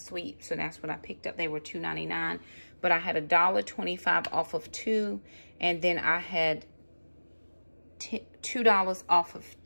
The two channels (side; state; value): both; inverted; correlation -1.00